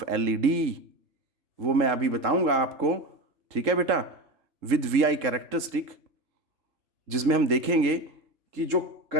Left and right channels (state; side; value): late; left; 3.7 ms